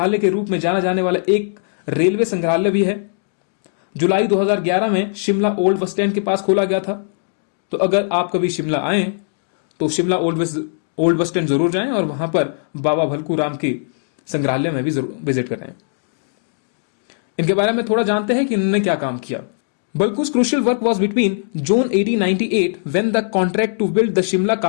के रूप में जाना जाने वाला एक रेलवे संग्रहालय भी है। जुलाई 2011 में शिमला ओल्ड बस स्टैंड के पास खोला गया था। तो अगर आप कभी शिमला आए तो शिमला ओल्ड बस स्टैंड जरूर जाएं और वहां पर बाबा भलकू राम के संग्रहालय में भी जरूर विजिट करें। इनके बारे में थोड़ा जानते हैं कि इन्होंने क्या काम किया। Balku's crucial work was between June 1898 when the contract to build the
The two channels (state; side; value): silent; right; digital silence